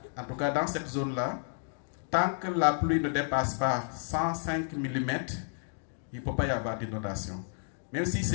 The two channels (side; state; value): right; silent; 57 dB below the other